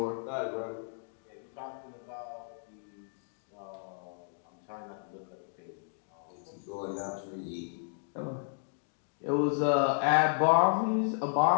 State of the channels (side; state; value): right; silent; digital silence